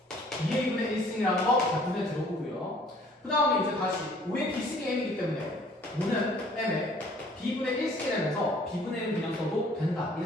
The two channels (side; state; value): both; normal; correlation 0.56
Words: 2A분의 1승이라는 거 자, 눈에 들어보고요. 그 다음에 이제 다시 5의 B승이 M이기 때문에 5는 M의 B분의 1승이 되면서 B분의 1은 그냥 써도 된다,